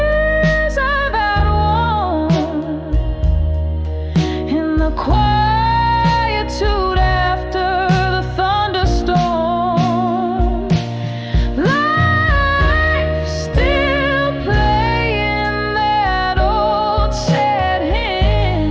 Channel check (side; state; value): both; identical; correlation 1.00